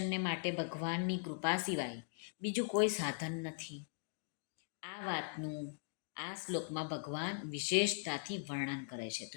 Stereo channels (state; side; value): silent; right; digital silence